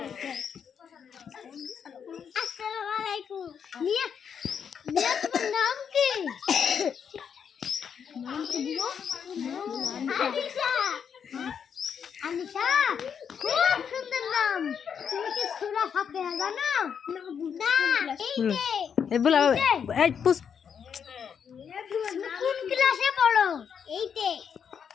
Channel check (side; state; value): right; quieter; 7.4 dB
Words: একটা। আসসালামু আলাইকুম। মিয়া, মিয়া তোমার নাম কি? নাম কি দিব? আনিশা। আনিশা, খুব সুন্দর নাম। তুমি কি সূরা ফাতিহা জানো? না, এই বলা এই পুষ কোন ক্লাসে পড়ো? এইটে।